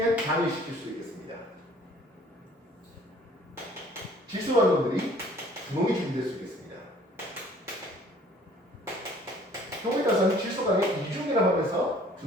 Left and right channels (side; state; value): both; normal; correlation 0.55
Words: 단위시킬 수 있겠습니다. 질소 반응들이 분홍이 준비될 수 있겠습니다. 경우에 따라서는 질소 간에 2중이라고 하면서